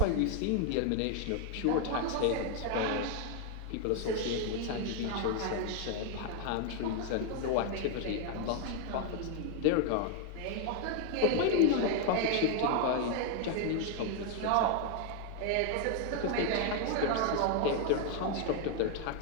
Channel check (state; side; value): different; both; correlation 0.01